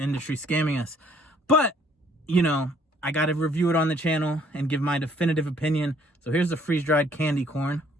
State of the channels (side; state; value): both; normal; correlation 0.62